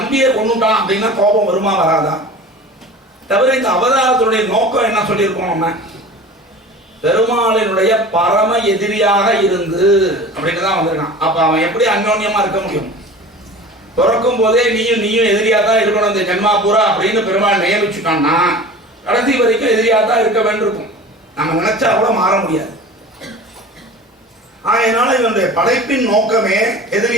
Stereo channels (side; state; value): both; normal; correlation 0.39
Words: கொண்டுட்டான் அப்படின்னா கோபம் வருமா வராதா? தவிர இந்த அவதாரத்துடைய நோக்கம் என்ன சொல்லியிருக்கோம் நம்ம, பெருமாளினுடைய பரம எதிரியாக இருந்து அப்படின்னு தான் வந்திருக்கான். அப்ப அவன் எப்படி அந்யோன்யமா இருக்க முடியும்? பிறக்கும் போதே நீயும் எதிரியா தான் இருக்கணும் இந்த ஜென்மா பூரா அப்படின்னு பெருமாள் நியமிச்சுட்டான்னா கடைசி வரைக்கும் எதிரியா தான் இருக்க வேண்டியிருக்கும். நம்ம நினைச்சா கூட மாற முடியாது. அதனால இவனுடைய படைப்பின் நோக்கமே